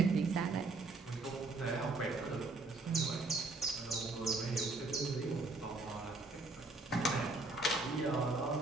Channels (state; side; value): quieter; left; 3.3 dB